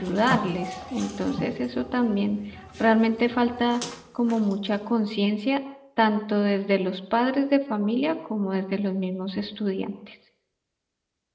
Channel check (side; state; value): both; identical; correlation 1.00